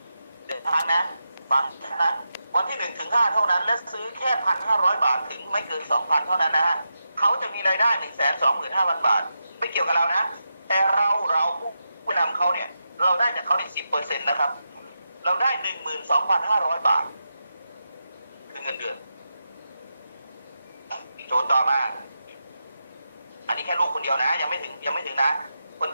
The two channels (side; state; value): both; inverted; correlation -0.88